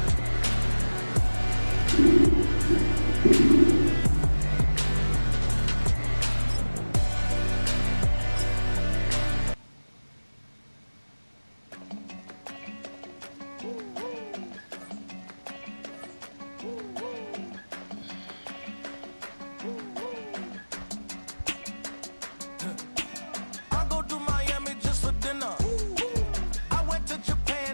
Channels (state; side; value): inverted; both; correlation -1.00